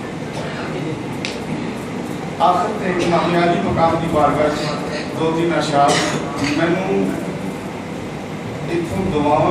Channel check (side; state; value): both; identical; correlation 1.00